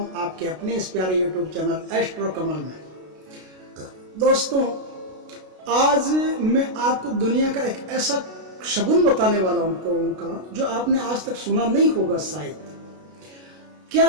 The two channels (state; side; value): late; left; 32 ms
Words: आपके अपने इस प्यारे यूट्यूब चैनल एस्ट्रो कमल में। दोस्तों, आज मैं आपको दुनिया का एक ऐसा शगुन बताने वाला हूं जो आपने आज तक सुना नहीं होगा शायद। क्या